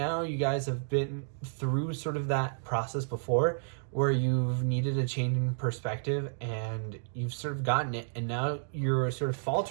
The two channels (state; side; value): silent; left; digital silence